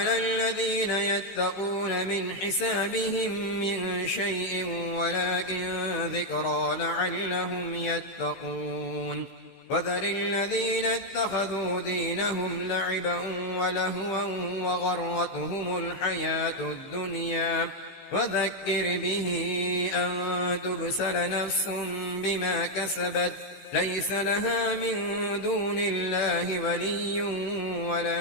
الذين يتقون من حسابهم من شيء ولكن ذكرى لعلهم يتقون وذر الذين اتخذوا دينهم لعبا ولهوا وغرتهم الحياة الدنيا وذكر به أن تبسل نفس بما كسبت ليس لها من دون الله ولي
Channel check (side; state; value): right; late; 15 ms